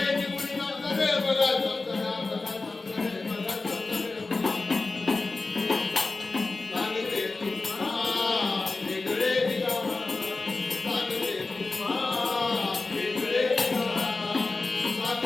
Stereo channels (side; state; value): right; quieter; 3.6 dB